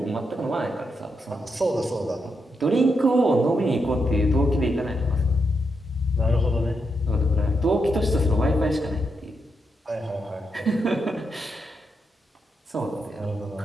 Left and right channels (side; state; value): both; normal; correlation 0.83